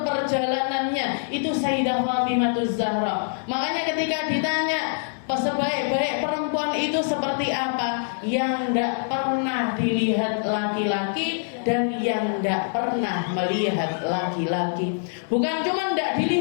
perjalanannya. Itu Sayyidah Fatimahuz Zahra. Makanya ketika ditanya sebaik-baik perempuan itu seperti apa, yang tidak pernah dilihat laki-laki dan yang tidak pernah melihat laki-laki. Bukan cuma tidak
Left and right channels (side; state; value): right; silent; digital silence